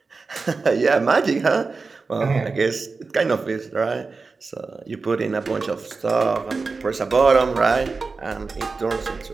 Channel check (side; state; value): left; quieter; 4.3 dB